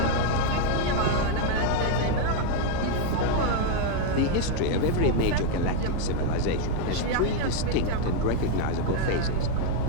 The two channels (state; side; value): different; both; correlation 0.01